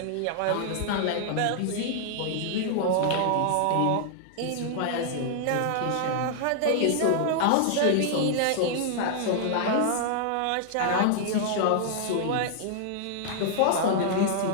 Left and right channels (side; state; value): both; different; correlation -0.01